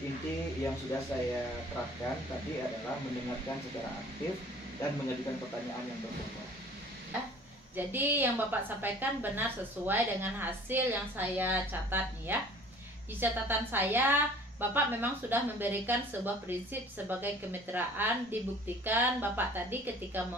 yang sudah saya terapkan tadi adalah mendengarkan secara aktif dan mengajukan pertanyaan yang berbobot. Jadi yang Bapak sampaikan benar sesuai dengan hasil yang saya catat nih ya. Di catatan saya, Bapak memang sudah memberikan sebuah prinsip sebagai kemitraan. Dibuktikan Bapak tadi ketika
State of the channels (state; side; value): normal; both; correlation 0.49